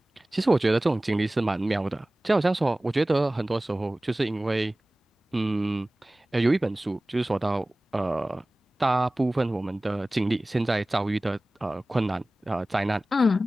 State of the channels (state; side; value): normal; both; correlation 0.98